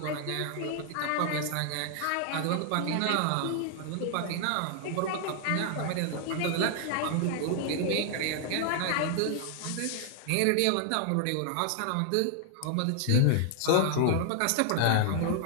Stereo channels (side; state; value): both; different; correlation -0.01